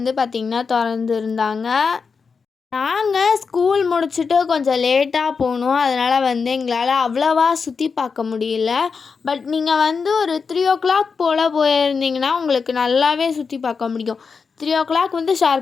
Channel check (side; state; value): right; quieter; 5.3 dB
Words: பார்த்திங்கன்னா திறந்துருந்தாங்க. நாங்கள் ஸ்கூல் முடிச்சுட்டு கொஞ்சம் லேட்டாக போனோம். அதனால் எங்களால் அவ்வளோவா சுற்றி பார்க்க முடியல. பட் நீங்கள் ஒரு 3 o'clock போல் போயிருந்தீங்கன்னா உங்களுக்கு நல்லாவே சுற்றி பார்க்க முடியும். 3 o'clock